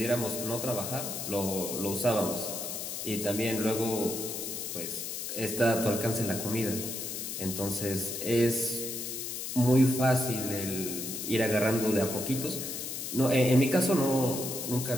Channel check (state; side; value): noise; left; hiss, 5 dB below the sound